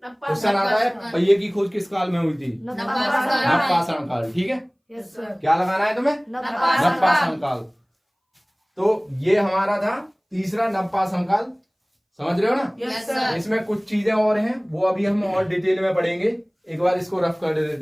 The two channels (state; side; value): identical; both; correlation 1.00